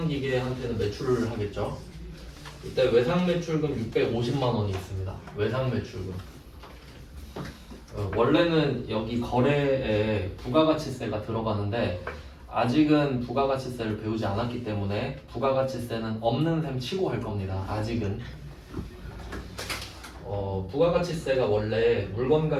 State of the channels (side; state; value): both; identical; correlation 1.00